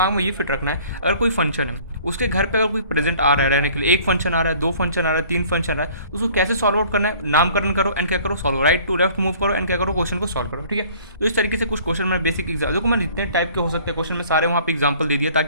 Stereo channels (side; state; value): both; inverted; correlation -0.52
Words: में ये फिट रखना है, अगर कोई फंक्शन है उसके घर पर अगर कोई प्रेजेंट आ रहा है रहने के लिए, एक फंक्शन आ रहा है, दो फंक्शन आ रहा है, तीन फंक्शन आ रहा है, उसको कैसे सॉल्व आउट करना है, नामकरण करो एंड क्या करो, solve, right to left move करो एंड क्या करो, क्वेश्चन को सॉल्व करो, ठीक है। तो इस तरीके से कुछ क्वेश्चन में बेसिक एग्जाम, देखो मैंने जितने टाइप के हो सकते हैं क्वेश्चन में सारे वहाँ पे एग्जाम्पल दे दिया,